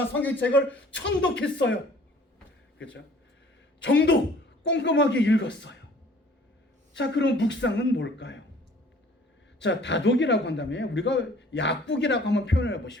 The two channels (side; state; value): both; normal; correlation 0.53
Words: 성경책을 천독했어요. 그렇죠? 정독 꼼꼼하게 읽었어요. 자, 그럼 묵상은 뭘까요? 자, 다독이라고 한다면 우리가 약국이라고 한번 표현해